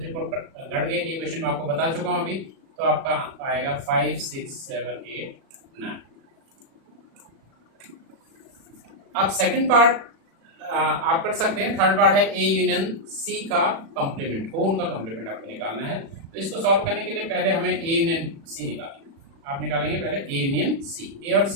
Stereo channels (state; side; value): late; left; 36 ms